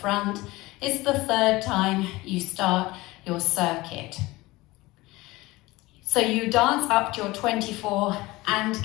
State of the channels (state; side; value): quieter; right; 20.3 dB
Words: It's the third time you start your circuit. So you dance up to your 24 and